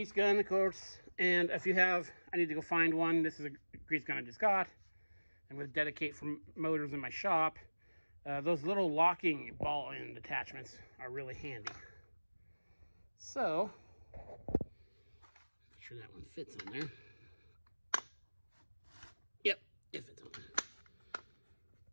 gun, of course. And if you have, I need to go find one. This is a grease gun I just got. I'm going to dedicate for motors in my shop. Those little locking ball end attachments are really handy. So, make sure that one fits on there. Yep, it fits on there.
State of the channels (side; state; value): both; inverted; correlation -1.00